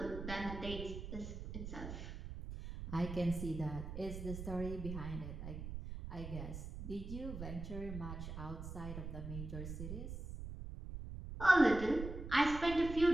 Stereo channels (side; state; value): right; noise; rumble, 8 dB below the sound